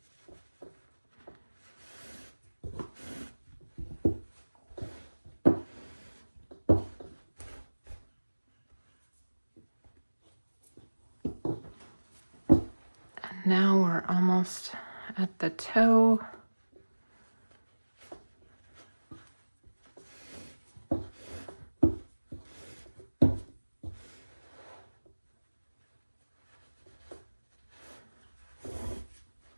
Now we're almost at the toe.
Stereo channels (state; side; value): inverted; both; correlation -1.00